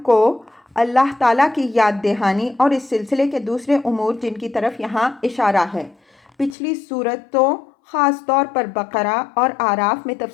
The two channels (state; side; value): drops out; right; at 6.6 s